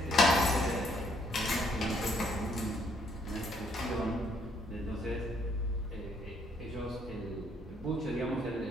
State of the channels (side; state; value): both; normal; correlation 0.68